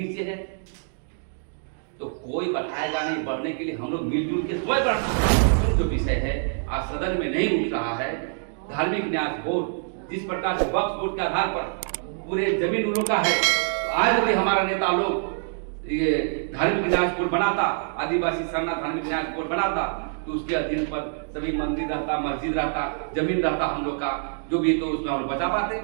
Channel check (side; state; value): left; silent; digital silence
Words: है। तो कोई बढ़ाएगा नहीं, बढ़ने के लिए हम लोग मिलजुल के स्वयं बढ़ना। जो विषय है आज सदन में नहीं उठ रहा है, धार्मिक न्यास बोर्ड जिस प्रकार से वक्फ बोर्ड के आधार पर पूरे जमीन उन लोग का है, आज भी हमारा नेता लोग ये धार्मिक न्यास बोर्ड बनाता, आदिवासी सरना धार्मिक न्यास बोर्ड बनाता, तो उसके अधीन पर सभी मंदिर रहता, मस्जिद रहता, जमीन रहता हम लोग का, जो भी तो उसमें हम लोग बचा पाते।